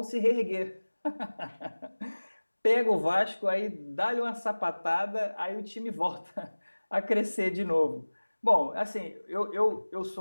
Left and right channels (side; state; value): both; inverted; correlation -1.00